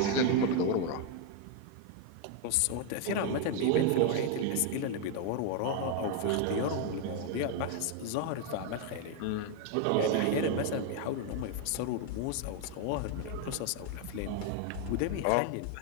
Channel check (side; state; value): both; different; correlation 0.00